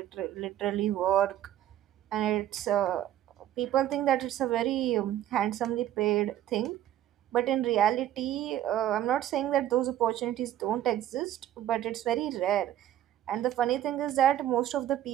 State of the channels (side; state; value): left; quieter; 12.0 dB